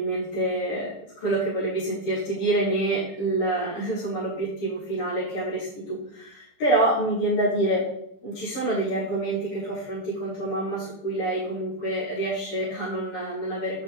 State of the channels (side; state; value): right; late; 20 ms